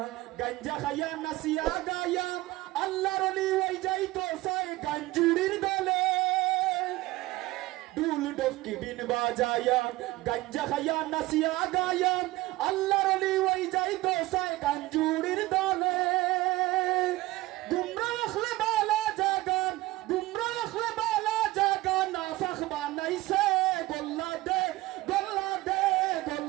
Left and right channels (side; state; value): left; quieter; 18.8 dB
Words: গঞ্জা খায়া নাসিয়া গায়া আল্লাহর ওলি ওই যাইতো সাই গঞ্জুরির দলে ডুল ডফকি বিন বাজায়া গঞ্জা খায়া নাসিয়া গায়া আল্লাহর ওলি ওই যাইতো সাই গঞ্জুরির দলে নাইছে গোল্লা দে গোল্লা দে